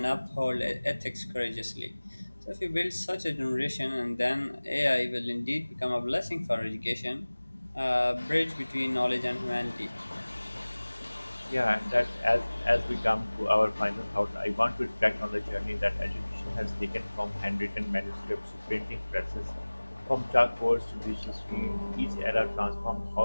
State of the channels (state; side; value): inverted; both; correlation -1.00